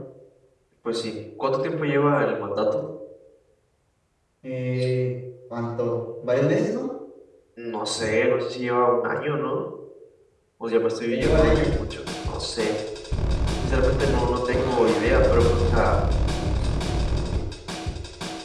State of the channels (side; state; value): both; identical; correlation 1.00